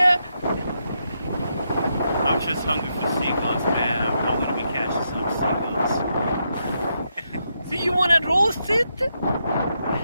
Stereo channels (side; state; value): both; inverted; correlation -0.82